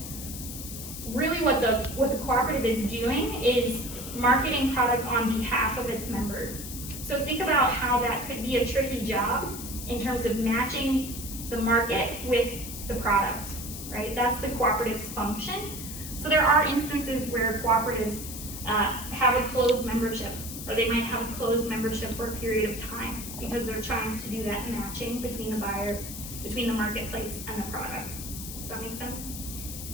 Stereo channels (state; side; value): noise; left; hiss, 9 dB below the sound